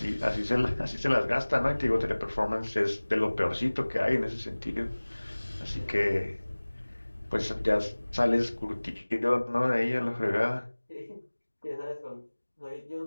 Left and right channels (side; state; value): both; inverted; correlation -1.00